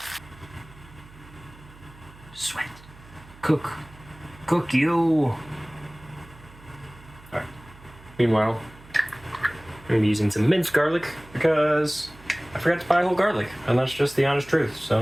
Sweat. Cook. Cook you. Alright. Meanwhile, I'm going to be using some minced garlic because I forgot to buy whole garlic, and that's just the honest truth,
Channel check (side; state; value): right; noise; hum, 22 dB below the sound